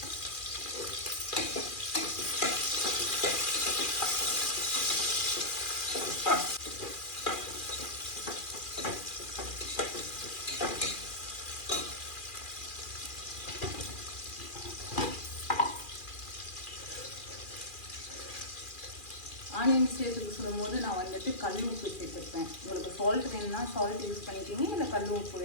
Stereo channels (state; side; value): late; right; 2.4 ms